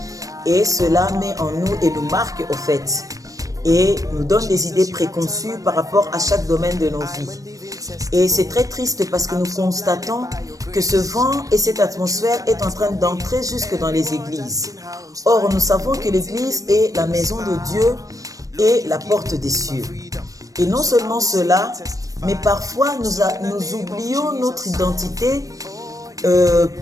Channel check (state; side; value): late; left; 0.16 ms